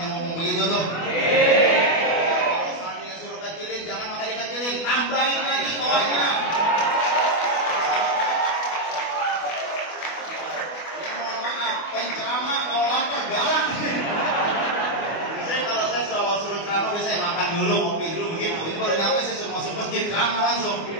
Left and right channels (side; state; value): right; late; 24 ms